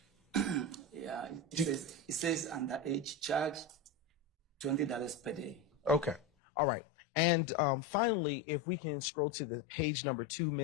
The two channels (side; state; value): right; drops out; at 6.2 s